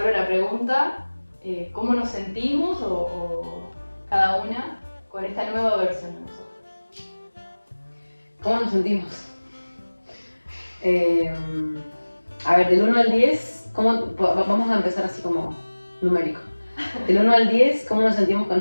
la pregunta, ¿cómo nos sentimos o cada una con esta nueva versión de nosotros? ¿Cómo nos sentimos? A ver, del 1 al 10, vamos a empezar así como numérico. Del 1 al 10, ¿cómo nos sentimos con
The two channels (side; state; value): both; inverted; correlation -1.00